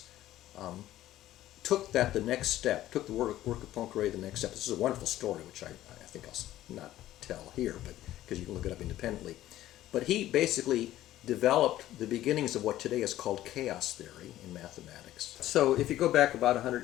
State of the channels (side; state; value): right; quieter; 14.1 dB